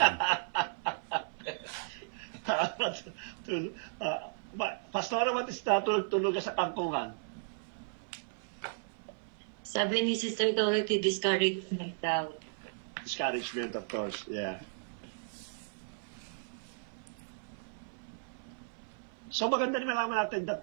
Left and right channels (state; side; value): silent; left; 55 dB below the other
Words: Pastora, what is that? Tulog sa kangkungan? Sabi ni Sister Dorothy, discouragement daw. Discouragement, of course, yeah. So maganda rin malaman natin that